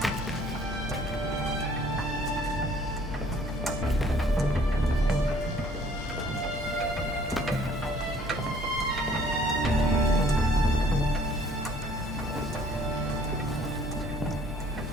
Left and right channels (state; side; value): normal; both; correlation 0.58